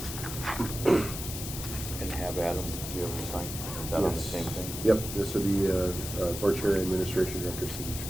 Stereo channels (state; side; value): noise; left; hiss, 7 dB below the sound